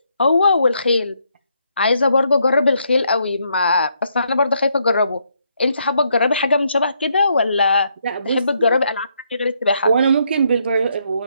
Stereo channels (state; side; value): inverted; both; correlation -0.74